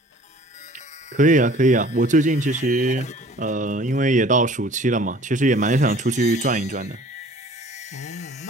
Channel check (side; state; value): both; normal; correlation 0.50